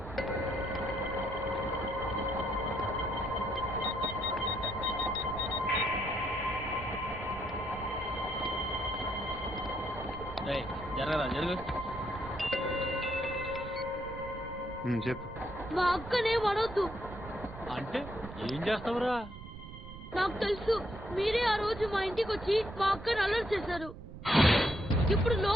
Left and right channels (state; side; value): noise; right; rumble, 13 dB below the sound